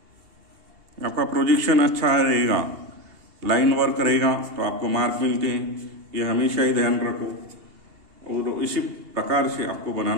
आपका प्रोजेक्शन अच्छा रहेगा, लाइन वर्क रहेगा तो आपको मार्क मिलते हैं। ये हमेशा ही ध्यान रखो। और इसी प्रकार से आपको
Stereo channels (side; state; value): left; late; 2.8 ms